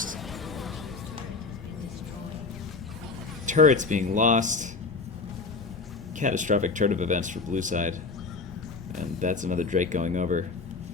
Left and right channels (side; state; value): right; quieter; 4.2 dB